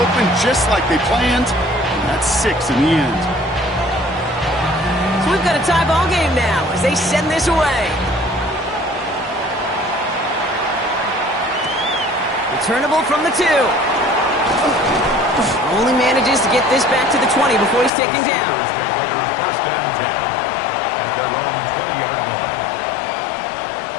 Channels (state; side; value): drops out; right; at 17.9 s